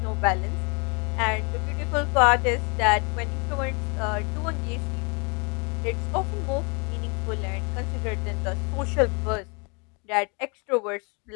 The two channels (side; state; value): right; quieter; 32.8 dB